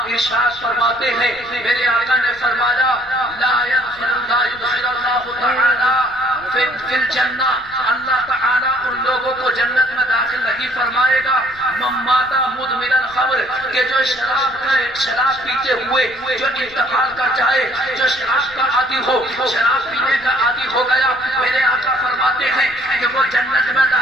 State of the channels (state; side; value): noise; left; rumble, 24 dB below the sound